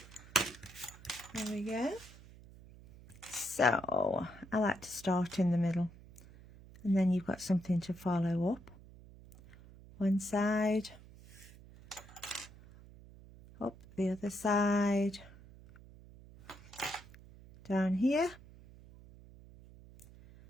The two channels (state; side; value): noise; right; hum, 20 dB below the sound